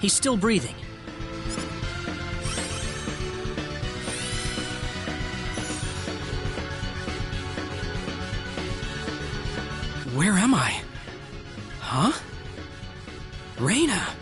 still breathing. Where am I? Huh? Reina,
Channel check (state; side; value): identical; both; correlation 1.00